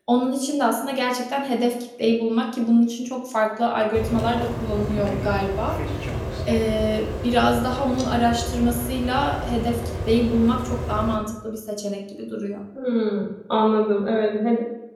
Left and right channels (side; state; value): both; identical; correlation 1.00